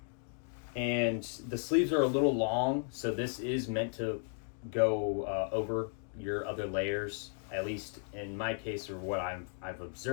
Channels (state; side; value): silent; right; 55 dB below the other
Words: the sleeves are a little long, so this is meant to go over your other layers, at least in my case, or what I've